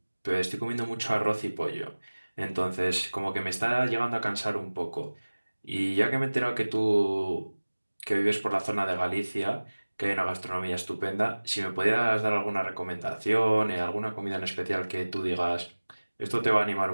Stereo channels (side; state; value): both; inverted; correlation -1.00